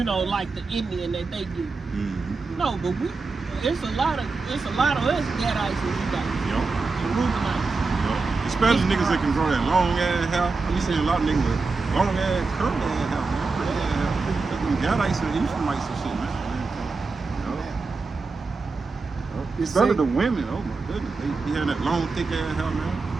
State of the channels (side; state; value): left; quieter; 4.1 dB